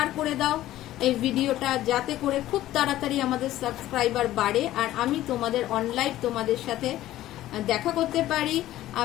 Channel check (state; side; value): quieter; right; 14.5 dB